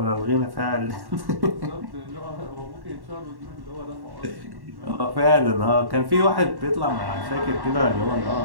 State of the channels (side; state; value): left; late; 1.1 ms